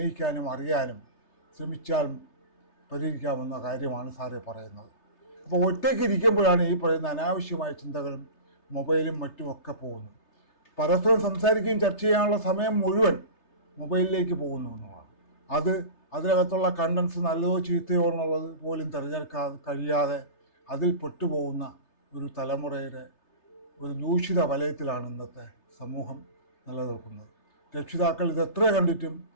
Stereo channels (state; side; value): late; right; 3.3 ms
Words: അറിയാനും ശ്രമിച്ചാൽ പരിഹരിക്കാവുന്ന കാര്യമാണ് സാറേ പറയുന്നത്. അപ്പോൾ ഒറ്റയ്ക്ക് ഇരിക്കുമ്പോഴാണ് ഈ പറയുന്ന അനാവശ്യമായ ചിന്തകളും മൊബൈലും മറ്റുമൊക്കെ പോകുന്നത്. പരസ്പരം സംസാരിക്കുകയും ചർച്ച ചെയ്യാനുള്ള സമയം മുഴുവൻ മൊബൈലിലേക്ക് പോകുന്നു എന്നുള്ളതാണ്. അതിനകത്തുള്ള കണ്ടൻസ് നല്ലതോ ചീത്തയോ എന്നുള്ളത് പോലും കഴിയാതെ അതിൽ പെട്ടുപോകുന്ന ഒരു തലമുറയുടെ ഒരു ദൂഷിത വലയത്തിലാണ് ഇന്നത്തെ സമൂഹം നിലനിൽക്കുന്നത്. രക്ഷിതാക്കൾ ഇതെത്ര കണ്ടിട്ടും